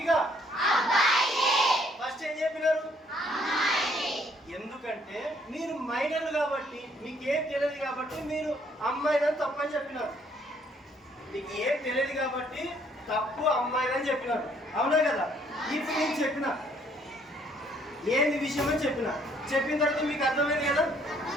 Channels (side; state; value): both; normal; correlation 0.65